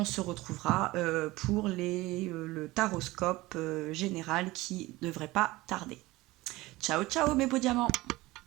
se retrouvera pour le taroscope général qui ne devrait pas tarder. Ciao ciao mes beaux diamants!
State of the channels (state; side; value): quieter; left; 19.7 dB